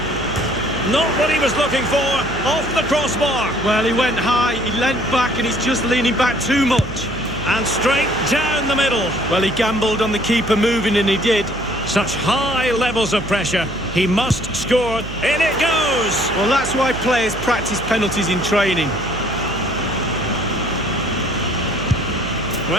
Not what he was looking for, off the crossbar. Well, he went high, he leant back, and he's just leaning back too much. And straight down the middle. Well, he gambled on the keeper moving, and he did. Such high levels of pressure. He must score. In it goes. Well, that's why players practice penalties in training.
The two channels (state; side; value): noise; right; hum, 11 dB below the sound